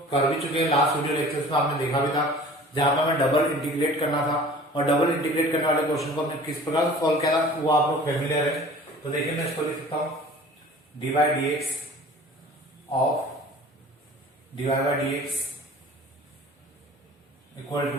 कर भी चुके हैं, लास्ट वीडियो लेक्चर्स में आपने देखा भी था, जहां पर हमें डबल इंटीग्रेट करना था, और डबल इंटीग्रेट करने वाले क्वेश्चन को हमने किस प्रकार सॉल्व किया था वो आप लोग फेमिलियर है। तो देखिए मैं इसको लिख सकता हूं dy by dx of dy by dx equal to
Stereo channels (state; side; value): normal; both; correlation 0.45